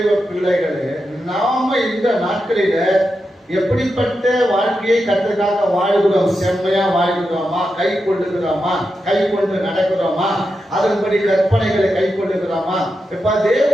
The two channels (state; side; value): normal; both; correlation 0.88